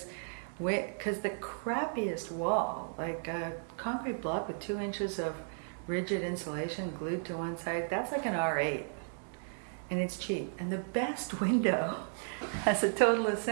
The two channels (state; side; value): silent; left; digital silence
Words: the crappiest wall, like a concrete block with 2 inches of rigid insulation glued to one side, that's like an R8, and it's cheap. And the best window as a total